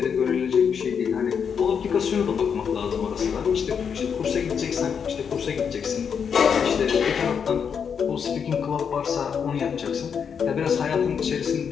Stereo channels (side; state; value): right; quieter; 6.9 dB